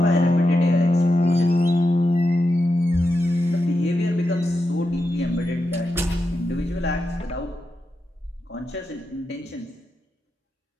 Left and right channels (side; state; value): both; normal; correlation 0.88